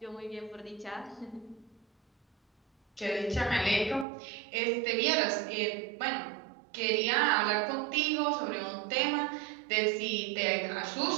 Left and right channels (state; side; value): drops out; left; at 4.0 s